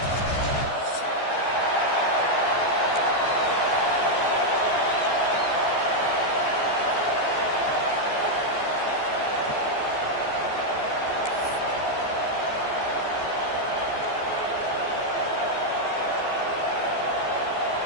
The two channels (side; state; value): right; late; 14 ms